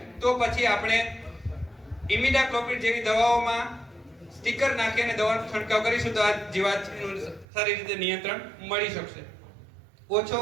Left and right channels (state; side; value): drops out; left; at 7.5 s